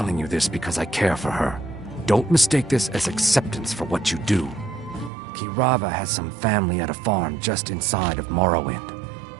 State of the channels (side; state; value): left; drops out; at 5.1 s